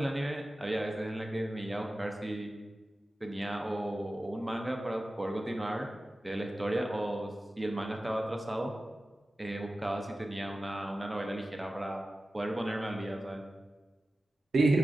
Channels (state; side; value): normal; both; correlation 0.94